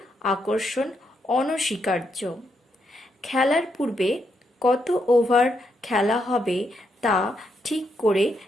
আকর্ষণ অনস্বীকার্য। খেলার পূর্বে কত ওভার খেলা হবে তা ঠিক করে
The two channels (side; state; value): both; normal; correlation 0.79